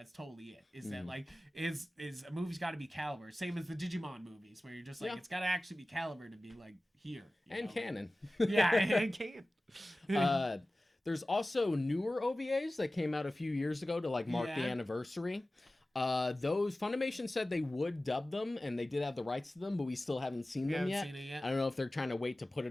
totally it. Is that like, is a movie's got to be caliber. Same as the Digimon movies, where you're just like, it's got to actually be caliber to be like here. And canon. Yeah, and canon. There's also newer OVAs that came out a few years ago to like mark the anniversary. Those Funimation said they would dub them, and they did have the rights to them, but we still haven't seen them yet. I don't know if they're trying to wait to put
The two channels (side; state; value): both; normal; correlation 0.97